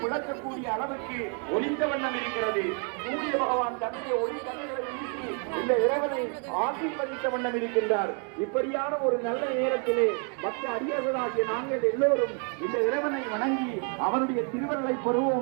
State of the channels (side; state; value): left; quieter; 39.9 dB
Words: பிளக்கக்கூடிய அளவுக்கு ஒலித்த வண்ணம் இருக்கிறது. சூரிய பகவான் தன்னுடைய ஒளி கண்களை வீசி இந்த இறைவனை ஆசீர்வதித்த வண்ணம் இருக்கின்றார். இப்படியான ஒரு நல்ல நேரத்திலே பக்த அடியவர்களாகிய நாங்கள் எல்லோரும் இந்த இறைவனை வணங்கி அவனுடைய திருவருளை